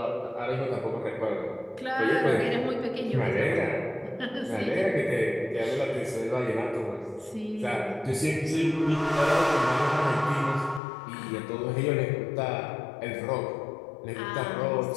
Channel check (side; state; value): right; drops out; at 10.8 s